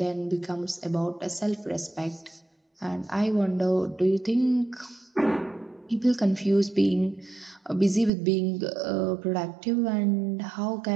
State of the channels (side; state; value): left; drops out; at 8.1 s